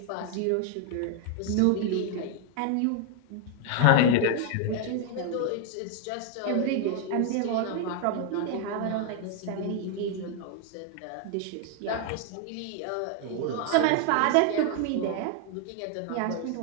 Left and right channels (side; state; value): both; different; correlation 0.00